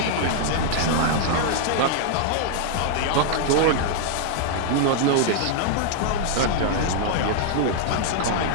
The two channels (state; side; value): different; both; correlation -0.01